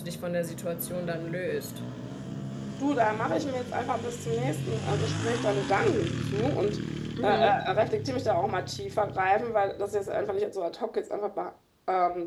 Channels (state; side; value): identical; both; correlation 1.00